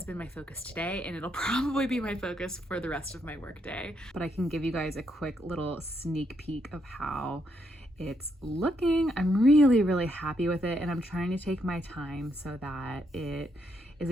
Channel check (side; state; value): both; normal; correlation 0.77